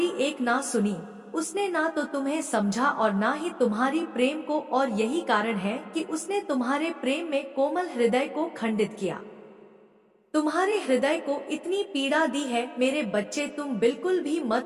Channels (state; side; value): identical; both; correlation 1.00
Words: एक ना सुनी, उसने ना तो तुम्हें समझा और ना ही तुम्हारी प्रेम को, और यही कारण है कि उसने तुम्हारे प्रेम में कोमल हृदय को खंडित किया। तुम्हारे हृदय को इतनी पीड़ा दी है। मेरे बच्चे, तुम बिल्कुल भी